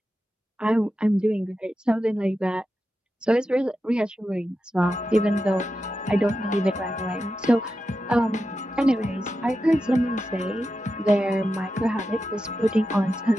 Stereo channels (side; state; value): both; normal; correlation 0.90